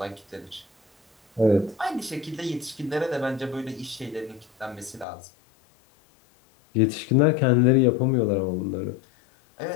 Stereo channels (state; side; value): drops out; right; at 5.1 s